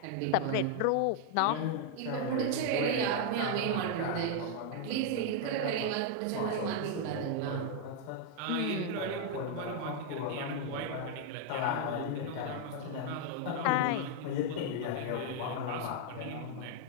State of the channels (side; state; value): both; different; correlation 0.00